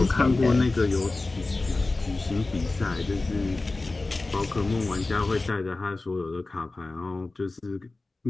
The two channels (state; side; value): quieter; right; 3.3 dB